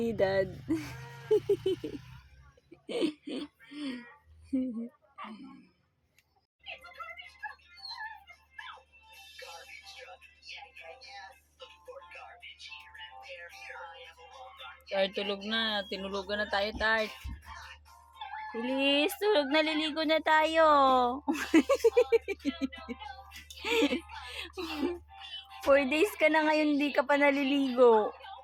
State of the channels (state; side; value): identical; both; correlation 1.00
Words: Tart, tulog na. Tinulugan na tayo, Tart. Feliz, tulog na, liligo na tayo. 4 days ka na ngayon, di ka pa naliligo.